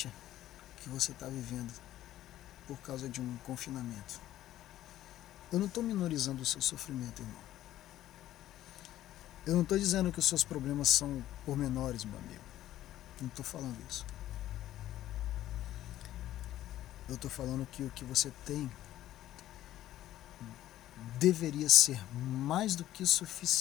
que você está vivendo por causa de um confinamento. Eu não estou minorizando o seu sofrimento, irmão. Eu não estou dizendo que os seus problemas são pormenores, meu amigo. Não estou falando isso. Eu estou falando que o que você tem deveria ser mais do que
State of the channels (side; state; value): right; quieter; 13.5 dB